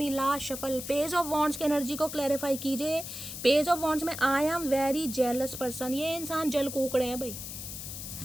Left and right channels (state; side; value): noise; left; hiss, 8 dB below the sound